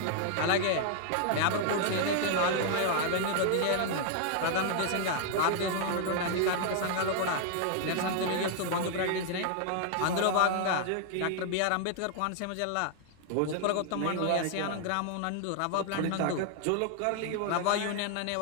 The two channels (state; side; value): different; both; correlation 0.00